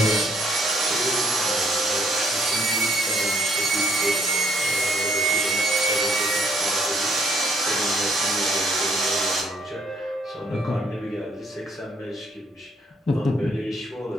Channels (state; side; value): normal; both; correlation 0.67